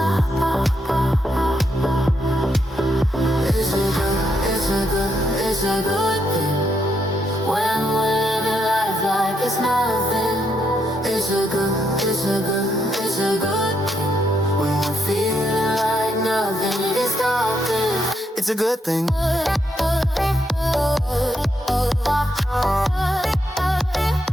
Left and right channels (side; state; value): both; normal; correlation 0.78